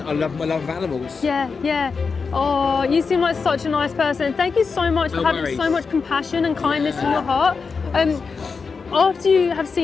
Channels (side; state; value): right; quieter; 5.0 dB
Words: love my love of animals. Yeah. Oh, you seem like such a nice person. Thank you so much for having so much compassion and kindness in your heart. After you have